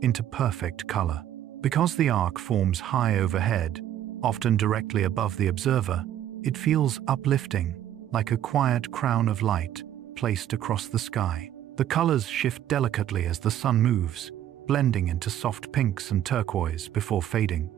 into perfect color. Because the arc forms high overhead, often directly above the observer, it feels uplifting, like a quiet crown of light placed across the sky. The colors shift delicately as the sun moves, blending into soft pinks and turquoise before fading.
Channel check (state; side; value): quieter; left; 11.4 dB